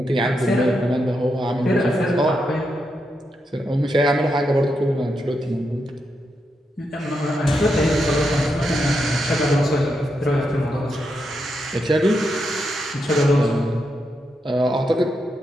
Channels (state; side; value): normal; both; correlation 0.84